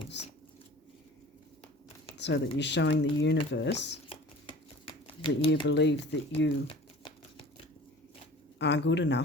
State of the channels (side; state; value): both; normal; correlation 0.43